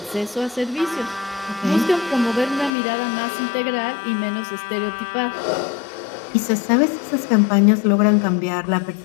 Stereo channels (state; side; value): drops out; right; at 2.7 s